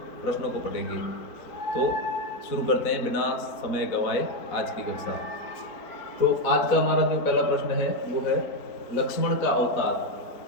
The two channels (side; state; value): right; late; 4.1 ms